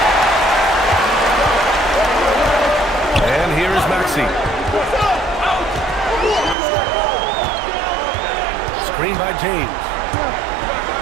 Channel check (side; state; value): left; drops out; at 6.6 s